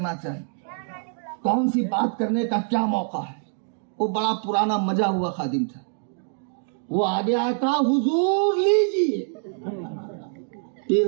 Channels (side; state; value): left; silent; 62 dB below the other